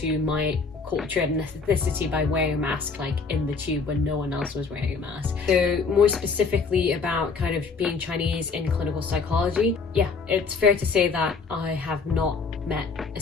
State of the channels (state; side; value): quieter; right; 4.7 dB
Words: my culture and ethnicity by wearing a mask, like in the tube when no one else was wearing a mask. So more specifically about kind of being Chinese in clinical psychology, yeah, it's fair to say that I have not met a